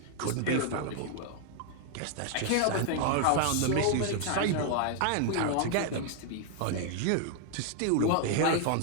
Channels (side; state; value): both; different; correlation 0.00